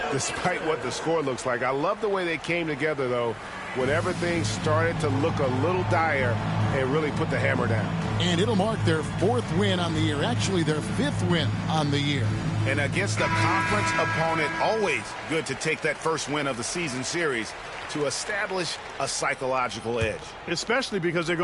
despite what the score looks like. I love the way they came together, though, when everything started to look a little dire and really put the hammer down. And it'll mark their 4th win on the year, actually their 5th win on the year. And against a conference opponent, always good to take that first win of the season series to establish a psychological edge. Especially because they're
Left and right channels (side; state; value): both; identical; correlation 1.00